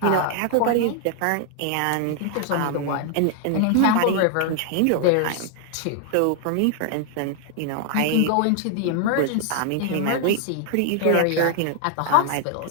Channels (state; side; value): different; both; correlation 0.00